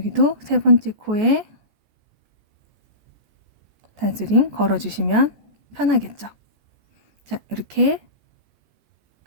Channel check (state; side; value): late; left; 14 ms